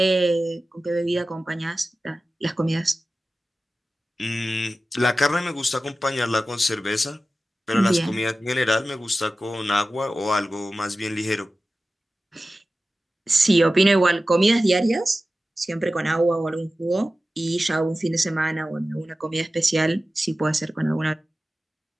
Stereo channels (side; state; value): both; normal; correlation 0.95